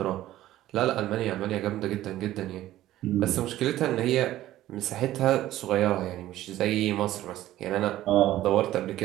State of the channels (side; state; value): left; quieter; 14.4 dB